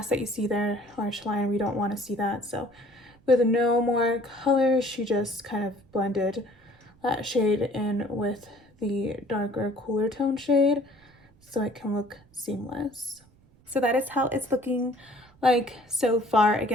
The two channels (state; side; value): noise; right; rumble, 29 dB below the sound